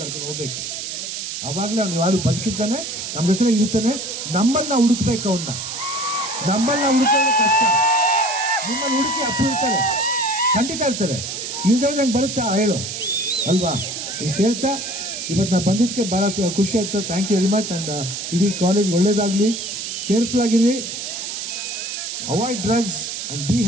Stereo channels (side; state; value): right; noise; hiss, 6 dB below the sound